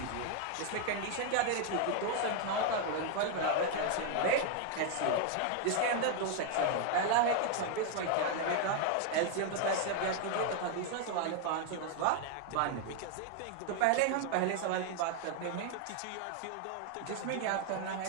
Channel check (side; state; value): both; different; correlation 0.00